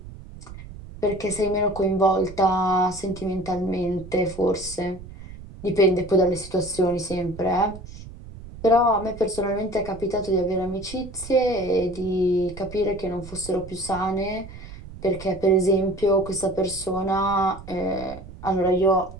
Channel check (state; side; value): noise; right; rumble, 15 dB below the sound